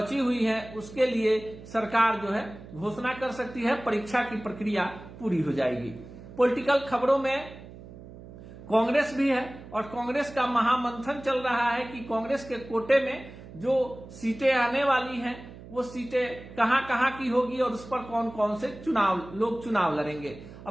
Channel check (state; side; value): noise; right; hum, 16 dB below the sound